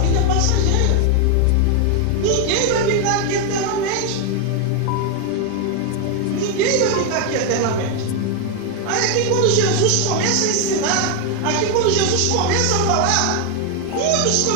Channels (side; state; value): both; different; correlation 0.01